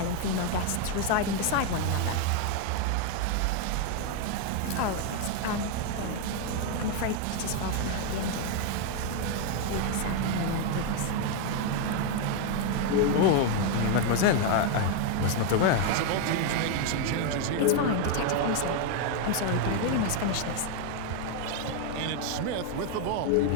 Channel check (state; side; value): different; both; correlation 0.00